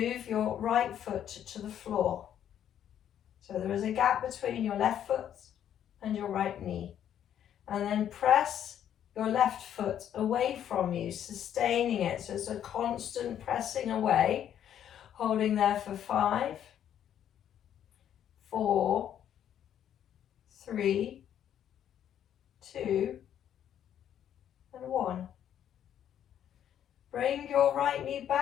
your right foot to the floor. So there is a gap between your left foot and your right knee. And then press your left foot away from you, sustaining it. So it's a constant pressing away, holding there for 5, 4, 3, 2, and 1. Bring your right knee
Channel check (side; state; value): right; quieter; 10.1 dB